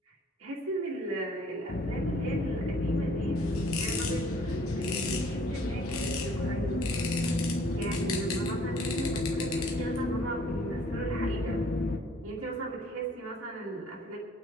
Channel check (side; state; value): both; normal; correlation 0.58